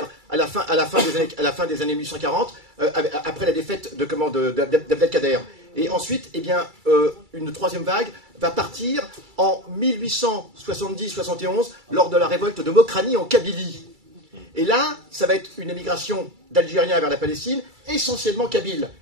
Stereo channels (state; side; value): late; left; 2.3 ms